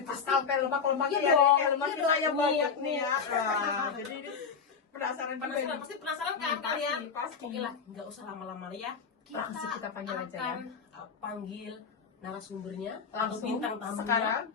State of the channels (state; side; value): quieter; right; 5.9 dB